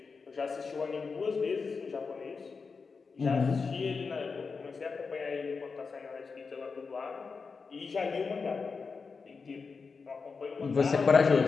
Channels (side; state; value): right; quieter; 4.9 dB